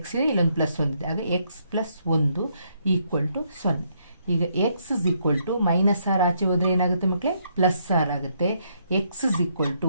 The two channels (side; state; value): both; inverted; correlation -0.73